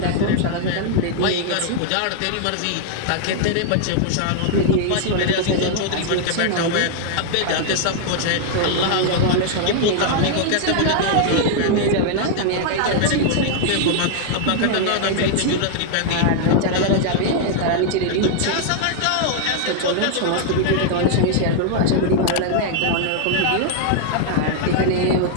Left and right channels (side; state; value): both; different; correlation 0.00